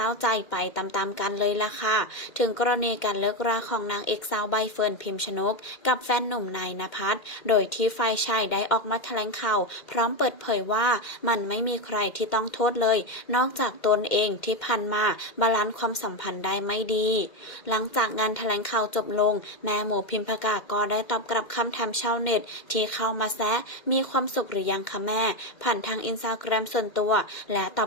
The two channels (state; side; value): late; right; 2.1 ms